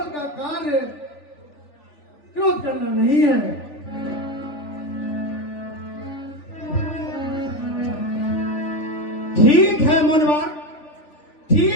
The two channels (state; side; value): late; right; 3.4 ms